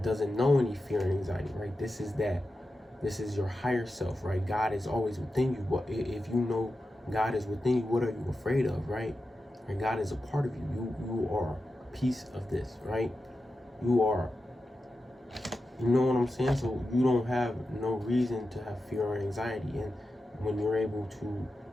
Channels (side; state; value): both; normal; correlation 0.91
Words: doesn't know any fear and anxiety, right? This is your higher self, right? God is always within you. But if you know God is within you, what are you afraid of, right? And God is a part of you. You are a piece of this, right? You are, you know what I'm saying? So you don't have no reason to have fear or anxiety. And when you're able to